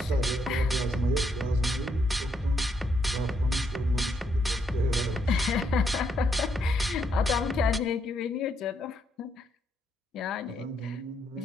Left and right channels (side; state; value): both; normal; correlation 0.76